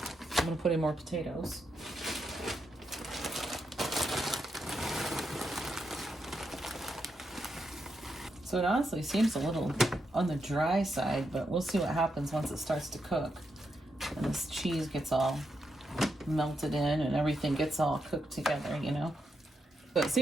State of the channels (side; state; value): both; normal; correlation 0.83